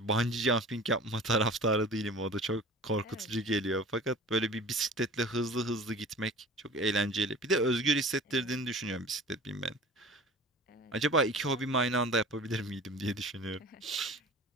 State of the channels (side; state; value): both; normal; correlation 0.42